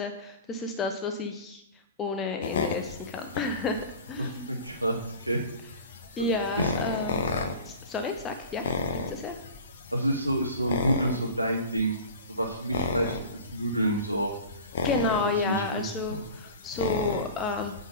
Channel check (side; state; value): both; inverted; correlation -0.37